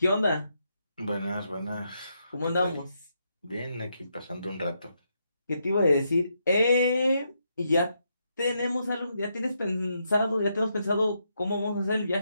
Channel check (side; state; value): both; inverted; correlation -0.80